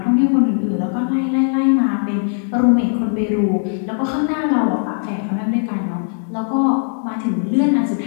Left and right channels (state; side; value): silent; right; 64 dB below the other